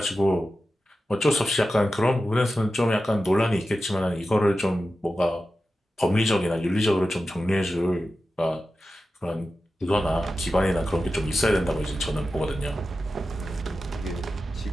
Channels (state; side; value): normal; both; correlation 0.93